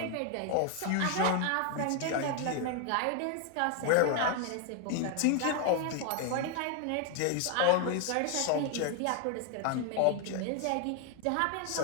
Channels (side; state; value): both; different; correlation 0.00